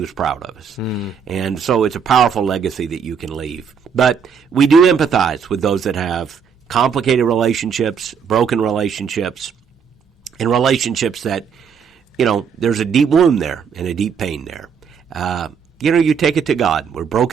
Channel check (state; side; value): quieter; left; 6.7 dB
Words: was proud of us. And so it's a powerful legacy that you can leave. But we do empathize with those that have complicated relationships, broken relationships, and relationships that, there's a deep wound there and a deep pain there. You take it to God. We're